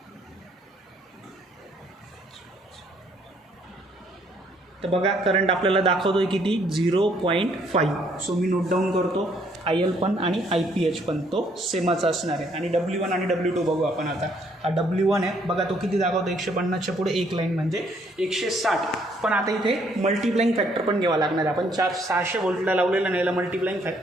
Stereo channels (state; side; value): normal; both; correlation 0.67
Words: तर बघा करंट आपल्याला दाखवतोय किती 0.5. सो मी नोट डाऊन करतो. IL पण आणि IPH पण तो सेमच असणार आहे आणि W1 आणि W2 बघू आपण. आता हा W1 आहे बघा तो किती दाखवतो 150च्या पुढे एक लाईन म्हणजे 160. पण आता इथे मल्टिप्लाइंग फॅक्टर पण घ्यावा लागणार आहे. आपण 600 व्होल्टला लावलेला नाही, याला मल्टिप्लाइंग